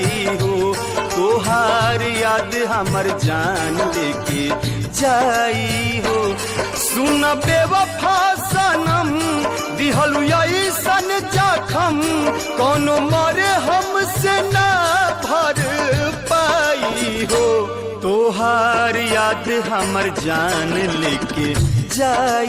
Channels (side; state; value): both; identical; correlation 1.00